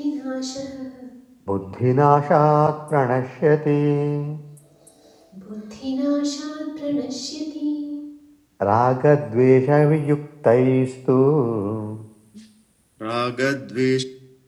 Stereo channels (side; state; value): both; identical; correlation 1.00